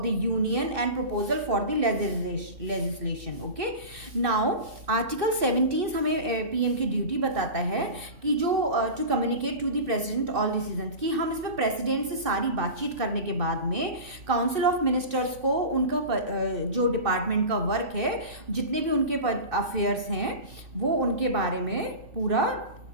the union and proposal for the legislation। okay, now article 17 हमें PM की duty बताता है कि जो to communicate to the president all decisions, कि हम इसमें president से सारी बातचीत करने के बाद में काउंसिल ऑफ मिनिस्टर्स को उनका जो डिपार्टमेंट का वर्क है, जितने भी उनके अफेयर्स हैं वो उनके बारे में पूरा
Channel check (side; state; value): left; late; 2.6 ms